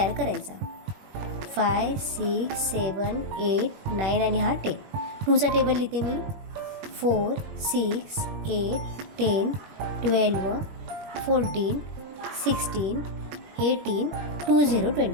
करायचा. 5, 6, 7, 8, 9 आणि हा 10. 2चा टेबल लिहिते मी. 4, 6, 8, 10, 12, 14, 16, 18, 20,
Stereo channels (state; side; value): late; left; 21 ms